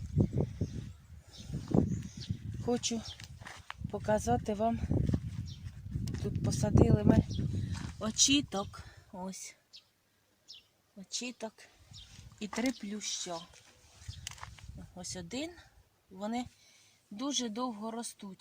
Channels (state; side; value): identical; both; correlation 1.00